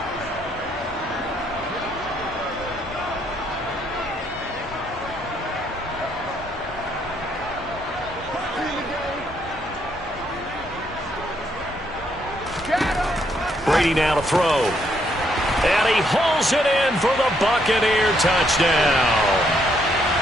Brady now to throw. And he hauls it in for the Buccaneer touchdown.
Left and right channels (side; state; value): both; normal; correlation 0.73